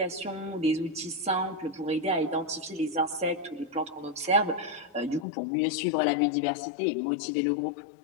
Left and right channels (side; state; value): right; drops out; at 5.2 s